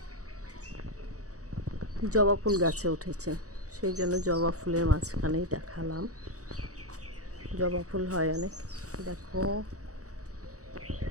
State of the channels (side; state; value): left; late; 0.66 ms